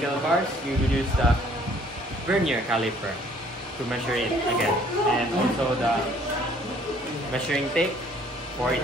steel bars, we will use the vernier caliper to measure it again. And also the measuring tape for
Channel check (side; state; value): both; normal; correlation 0.59